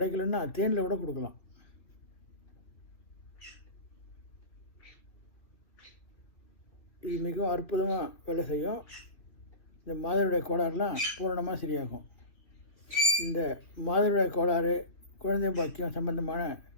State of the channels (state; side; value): late; right; 2.6 ms